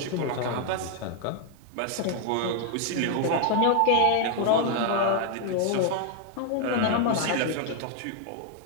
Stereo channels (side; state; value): both; different; correlation 0.00